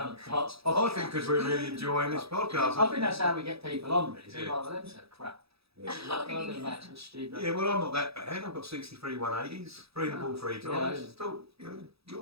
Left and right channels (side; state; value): left; late; 0.77 ms